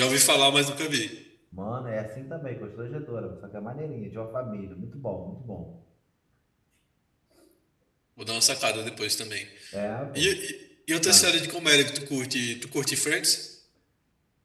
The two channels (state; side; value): identical; both; correlation 1.00